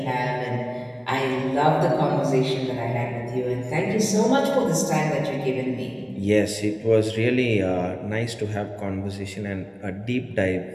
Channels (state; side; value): identical; both; correlation 1.00